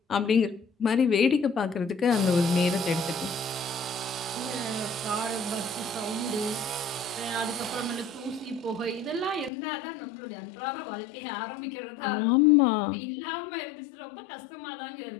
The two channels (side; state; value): right; drops out; at 9.5 s